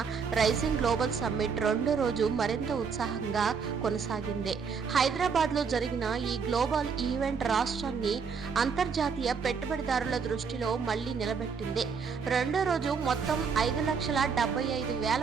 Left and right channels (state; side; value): quieter; left; 5.8 dB